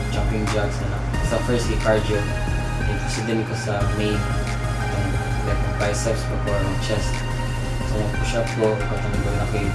jumping jacks na. Sa first kay cardio, proceed ko sa main, itong like biceps pa or chest. So mag-push up ko, katong na kay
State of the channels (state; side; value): identical; both; correlation 1.00